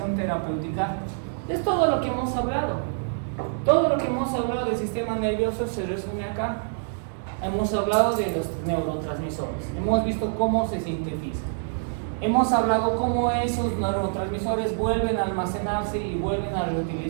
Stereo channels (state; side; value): silent; left; digital silence